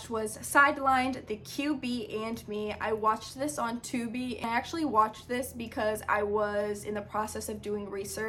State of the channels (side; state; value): both; identical; correlation 1.00